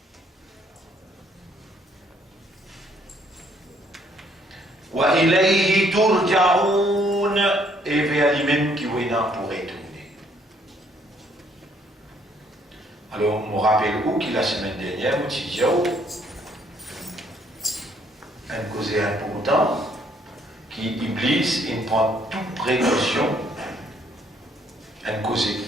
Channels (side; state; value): both; normal; correlation 0.66